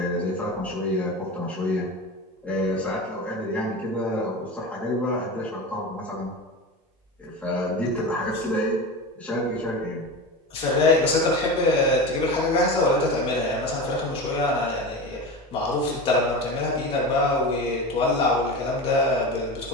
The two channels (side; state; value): both; normal; correlation 0.27